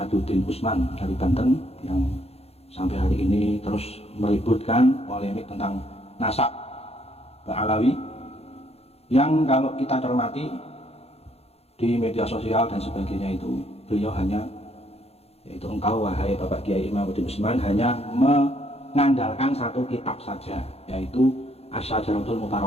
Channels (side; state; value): right; late; 0.29 ms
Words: Usman dari Banten yang sampai hari ini terus meributkan polemik tentang nasab Ba'alawi, yang kalau kita cermati di media sosial dan sebagainya itu beliau hanya, yaitu engkau wahai Bapak Kiai Imaduddin Usman, hanya mengandalkan satu kitab saja, yaitu Asy-Syajaratul